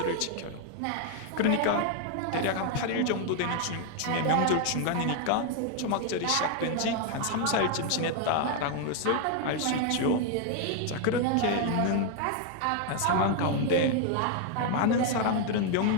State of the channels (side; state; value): both; different; correlation 0.00